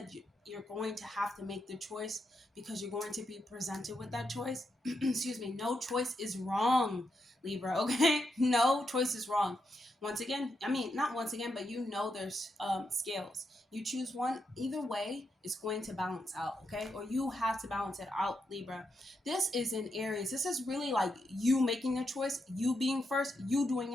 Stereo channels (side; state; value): both; normal; correlation 0.83